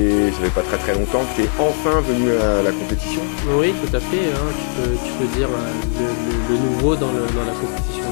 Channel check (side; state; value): right; silent; digital silence